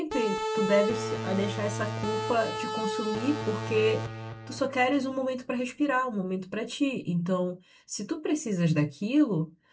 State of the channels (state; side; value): identical; both; correlation 1.00